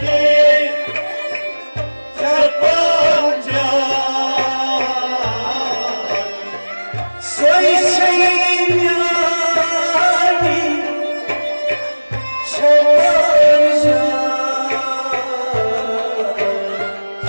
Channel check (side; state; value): both; inverted; correlation -1.00